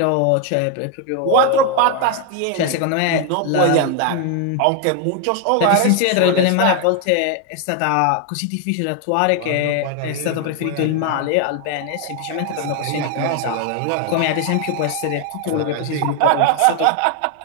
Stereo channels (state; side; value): different; both; correlation 0.01